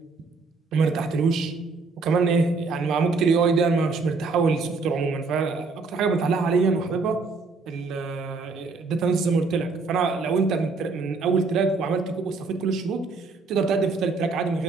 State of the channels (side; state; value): left; quieter; 4.1 dB